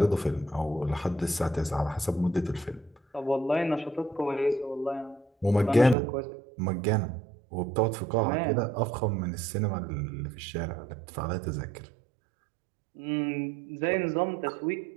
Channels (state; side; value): drops out; left; at 6.0 s